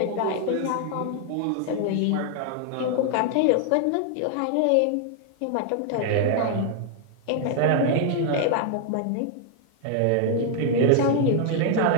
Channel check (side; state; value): both; different; correlation 0.00